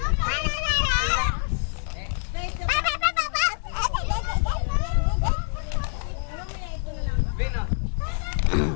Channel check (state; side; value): silent; right; digital silence